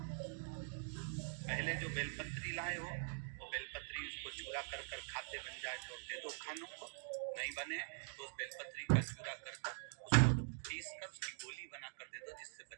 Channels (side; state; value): left; silent; digital silence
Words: पहले जो बेलपत्री लाए हो वो बेलपत्री उसको चूरा कर कर खाते बन जाए तो दे दो खानों को, नहीं बने तो उस बेलपत्री का चूरा कर उसको पीस कर उसकी गोली बना कर दे दो, जिससे